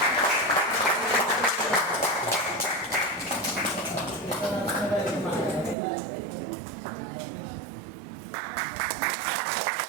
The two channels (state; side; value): drops out; left; at 5.8 s